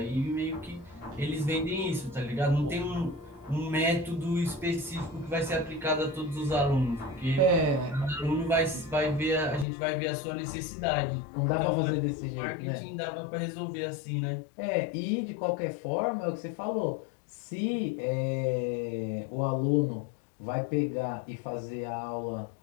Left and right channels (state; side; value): drops out; right; at 9.7 s